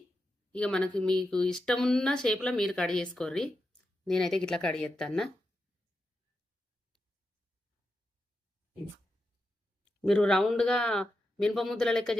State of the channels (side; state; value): both; normal; correlation 0.87